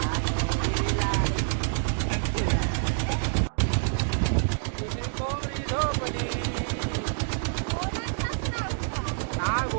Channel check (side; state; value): left; silent; digital silence